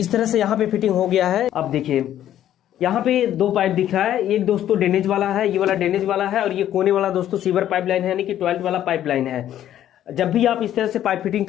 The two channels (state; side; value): quieter; right; 11.6 dB